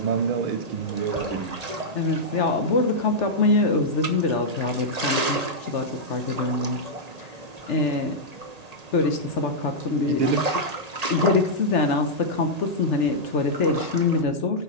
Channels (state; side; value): late; left; 1.8 ms